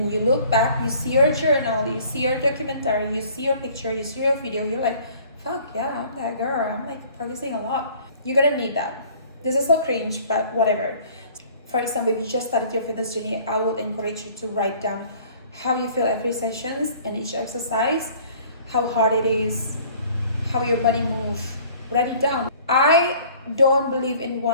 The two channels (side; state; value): both; inverted; correlation -0.52